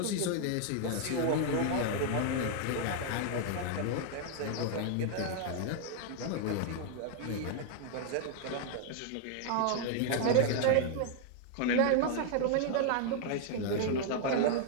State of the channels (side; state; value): both; different; correlation 0.00